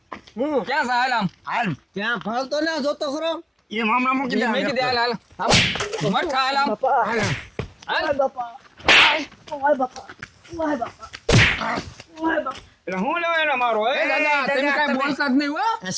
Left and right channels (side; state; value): both; identical; correlation 1.00